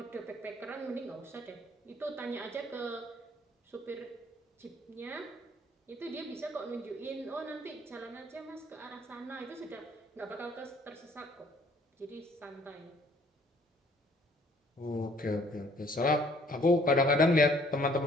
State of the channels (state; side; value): normal; both; correlation 0.60